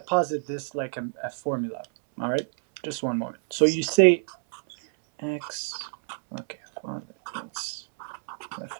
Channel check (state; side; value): silent; left; 60 dB below the other